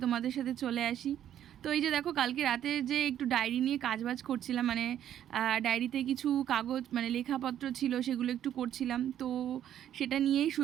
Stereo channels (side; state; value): left; quieter; 10.7 dB